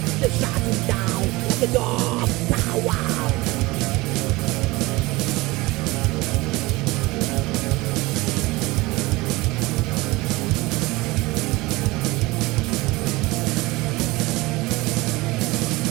They shot him down like a dog. Power.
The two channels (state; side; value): quieter; left; 21.5 dB